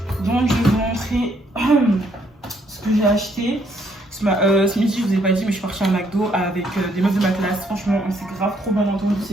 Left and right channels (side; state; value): both; normal; correlation 0.70